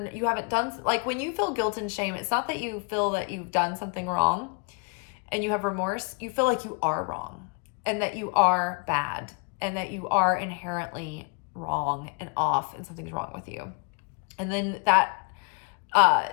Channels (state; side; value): quieter; right; 35.7 dB